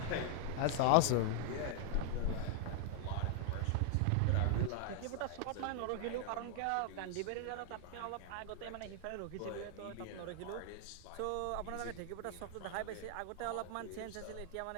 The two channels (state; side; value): different; both; correlation 0.00